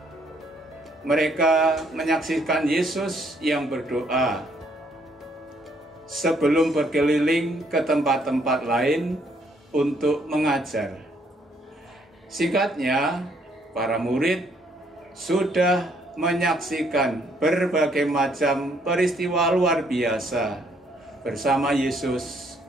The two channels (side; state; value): both; normal; correlation 0.68